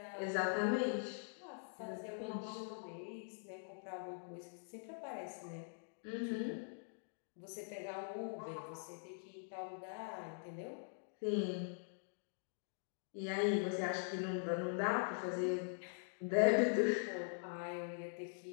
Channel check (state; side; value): silent; right; digital silence